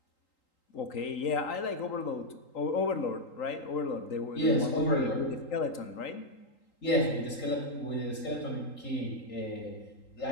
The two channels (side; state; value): right; late; 3.8 ms